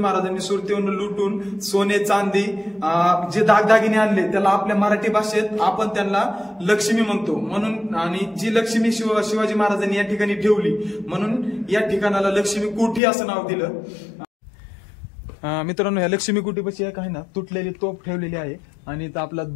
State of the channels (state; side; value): drops out; right; at 13.0 s